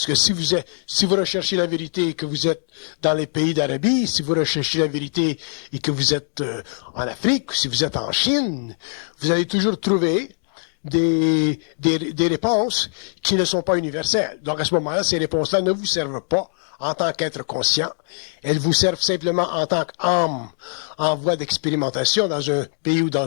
que si vous recherchez la vérité et que vous êtes dans les pays d'Arabie, si vous recherchez la vérité et que vous êtes en Afrique, si vous êtes en Chine, vous allez toujours trouver des réponses qui ne sont pas universelles. Donc à ce moment-là, ces réponses-là ne vous servent pas en tant qu'être conscient. Elles vous servent simplement en tant qu'âme en voie d'expérimentation dans un pays ou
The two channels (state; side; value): silent; right; 64 dB below the other